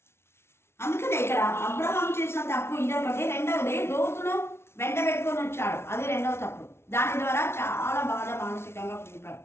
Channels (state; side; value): late; right; 0.12 ms